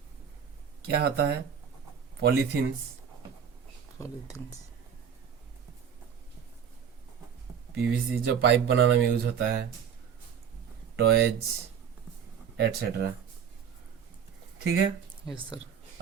क्या होता है? Polythenes, polythenes. पीवीसी जो पाइप बनाने में यूज होता है, टॉयज एटसेट्रा, ठीक है। Yes sir.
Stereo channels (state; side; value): quieter; left; 7.8 dB